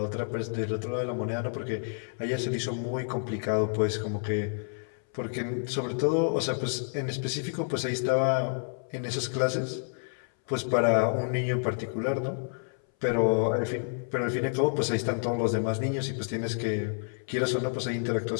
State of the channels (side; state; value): right; silent; 58 dB below the other